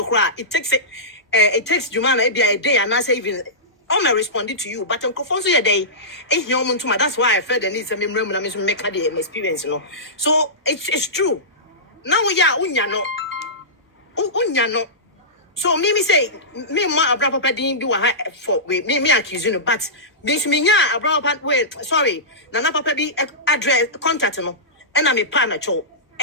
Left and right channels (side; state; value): both; normal; correlation -0.18